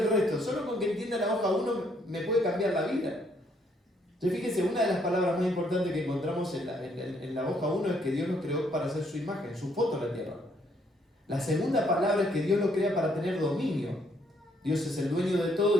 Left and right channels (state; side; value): normal; both; correlation 0.70